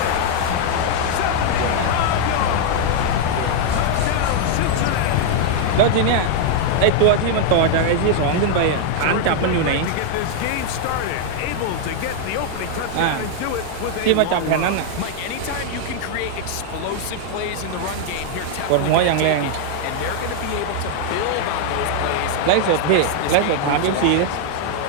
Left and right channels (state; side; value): different; both; correlation 0.00